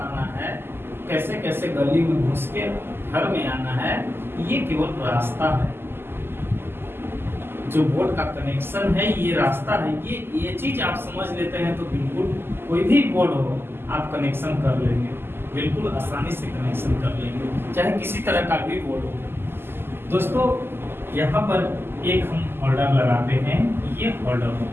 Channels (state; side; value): late; left; 0.11 ms